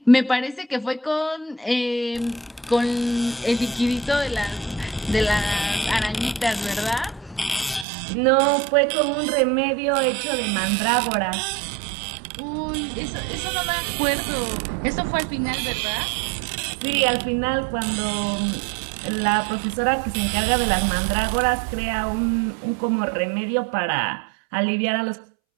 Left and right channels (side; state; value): left; drops out; at 7.9 s